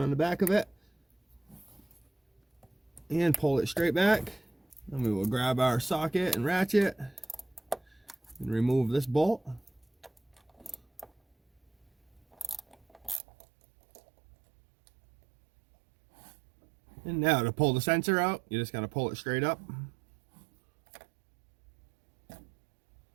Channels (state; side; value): drops out; left; at 13.2 s